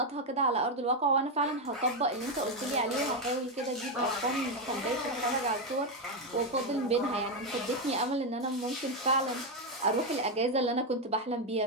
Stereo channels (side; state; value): both; normal; correlation 0.06